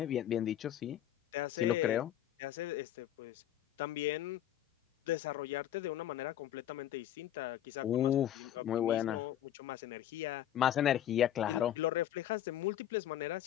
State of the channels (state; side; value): quieter; right; 11.6 dB